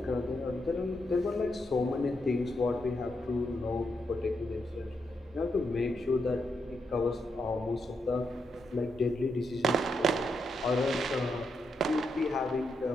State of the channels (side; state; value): both; normal; correlation 0.82